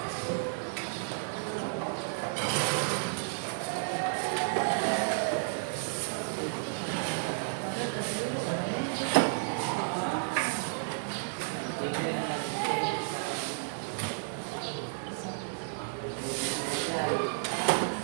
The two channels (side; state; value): left; silent; 56 dB below the other